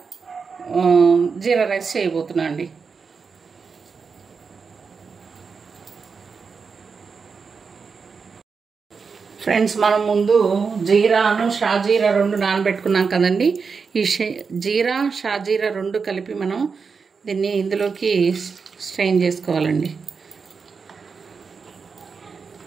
జీరా రైస్ చేయబోతున్నా అండి. ఫ్రెండ్స్, మనం ముందు జీరాను షాజీరా రెండు నానబెట్టుకున్నాం కదండి. ఈ జీరా షాజీరా రెండు కలిపి మనం దీన్ని ఇందులోకి స్ట్రెయిన్ చేసుకోవాలండి.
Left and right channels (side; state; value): left; quieter; 5.3 dB